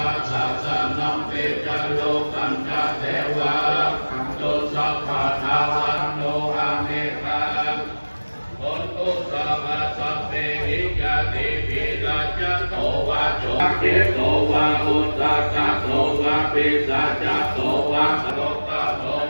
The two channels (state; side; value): inverted; both; correlation -1.00